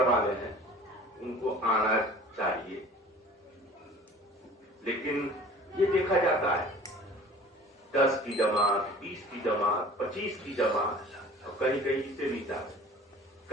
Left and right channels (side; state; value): both; normal; correlation 0.45